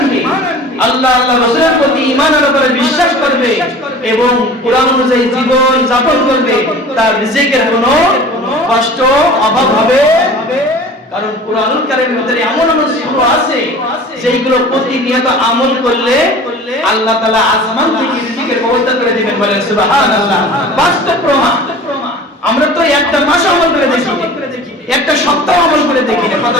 আল্লাহ রাসূলের প্রতি ঈমানের উপরে বিশ্বাস করবে এবং কোরআন অনুযায়ী জীবন যাপন করবে, তার রিজিকের কোনো কষ্ট অভাব হবে। কারণ কুরআনুল কারীমের ভিতরে এমন এমন সূরা আছে যেগুলো প্রতিনিয়ত আমল করলে আল্লাহ তাআলা আসমান থেকে রিজিকের ব্যবস্থা করে দিবেন। বলেন সুবহানাল্লাহ। বাস্তব প্রমাণ। আমরা তো একটা মাস আমল করে দেখি, একটা সপ্তাহ আমল করে দেখি না, কথা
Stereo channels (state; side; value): normal; both; correlation 0.42